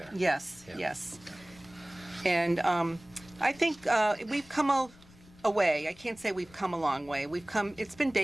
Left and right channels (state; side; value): noise; left; rumble, 24 dB below the sound